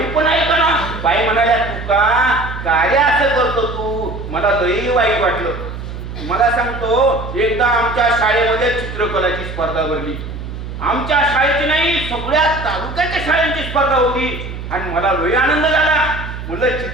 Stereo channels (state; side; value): noise; right; hum, 9 dB below the sound